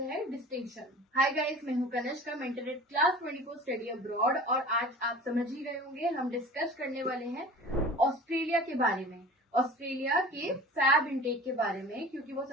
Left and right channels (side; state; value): both; normal; correlation 0.40